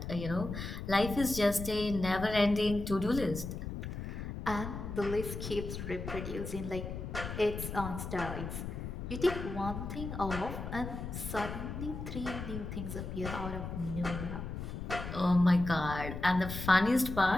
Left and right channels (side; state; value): left; noise; rumble, 6 dB below the sound